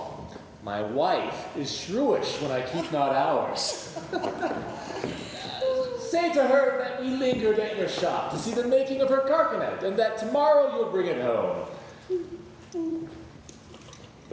My wife is shrewish when I keep not hours. Say to her that we lingered at your shop to see the making of her carcanet, and that tomorrow you'll bring it home.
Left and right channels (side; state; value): both; identical; correlation 1.00